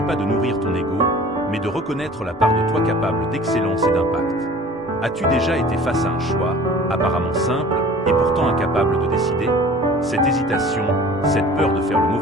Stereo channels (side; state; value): both; normal; correlation 0.45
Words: pas de nourrir ton ego, mais de reconnaître la part de toi capable d'excellence et d'impact. As-tu déjà été face à un choix, apparemment simple, et pourtant incapable de décider? Cette hésitation, cette peur de faire le